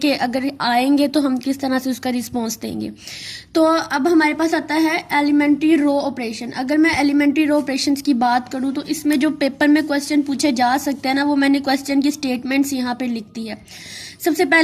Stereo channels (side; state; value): both; identical; correlation 1.00